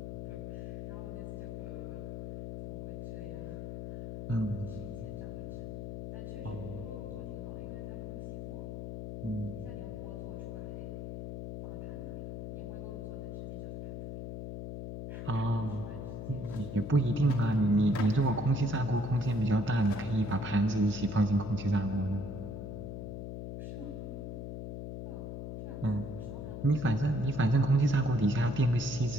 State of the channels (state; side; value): noise; left; hum, 7 dB below the sound